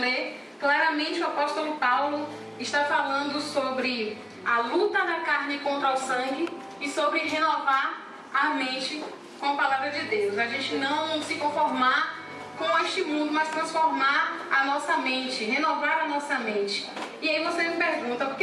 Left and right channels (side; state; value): both; identical; correlation 1.00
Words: claramente o apóstolo Paulo está falando sobre a luta da carne contra o sangue e sobre renovar a mente com a palavra de Deus. A gente não se conformar com este mundo, mas transformar a nossa mente, renovar a nossa mente. E aí você me pergunta, o que